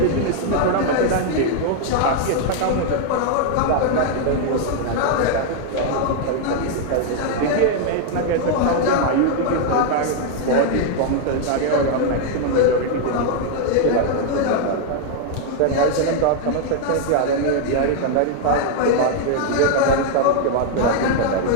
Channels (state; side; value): different; both; correlation 0.00